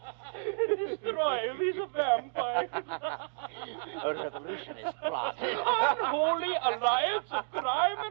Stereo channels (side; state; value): left; silent; digital silence